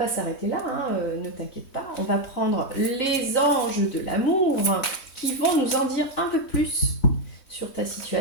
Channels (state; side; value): late; right; 3.2 ms